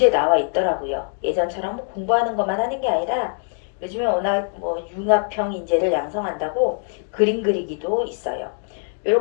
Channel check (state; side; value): silent; right; 62 dB below the other